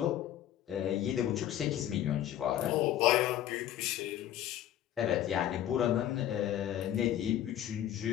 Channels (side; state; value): right; quieter; 11.9 dB